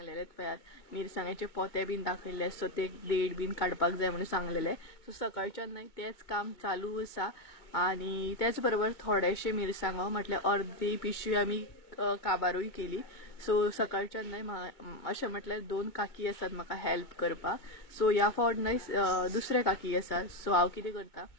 पळयात मिरसांग्याचे पोते बीन दाखयले. सो ते देठ बीन काडपाक जाय म्हणून सांगलेले. सो सकाळच्यान नाय तेच काम चालू आसा. आनी त्याच बरोबर थोडेशे मिरसांगो म्हटल्यार अर्धी पिशवी आमी काबारूय केली. सो सकाळच्यान नाय अशें म्हटल्यार 2 काकी आसात म्हाका हेल्प करपाक. सो ह्या फावट नाय दुसरे काकी आसात. सो हांव कितें करता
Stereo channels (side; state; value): right; late; 2.2 ms